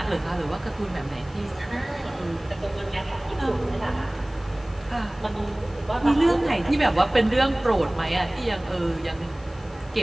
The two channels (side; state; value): left; noise; hiss, 27 dB below the sound